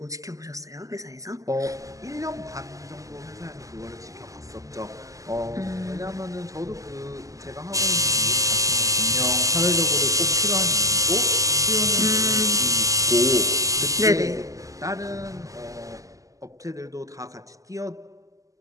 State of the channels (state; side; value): late; left; 0.16 ms